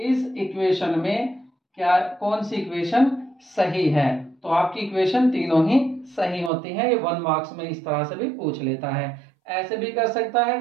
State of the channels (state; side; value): drops out; left; at 6.5 s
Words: इक्वेशन में क्या कौन सी इक्वेशन सही है। तो आपकी इक्वेशन तीनों ही सही होती हैं। ये 1 मार्क्स में इस तरह से भी पूछ लेता है। ऐसे भी कर सकता है,